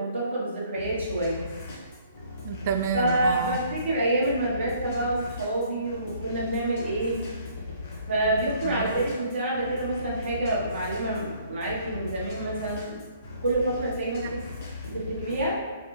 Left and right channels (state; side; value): inverted; both; correlation -0.60